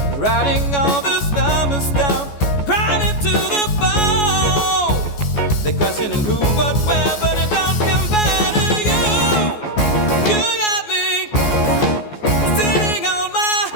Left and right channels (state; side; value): late; right; 14 ms